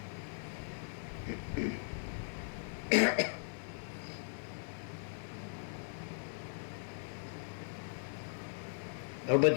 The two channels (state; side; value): silent; right; 52 dB below the other